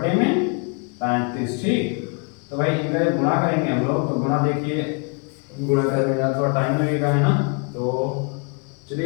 ठीक, तो भाई इनका गुणा करेंगे हम लोग, तो गुणा देखिए गुणा करने में थोड़ा टाइम लगेगा है ना, तो चलिए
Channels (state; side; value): quieter; right; 35.2 dB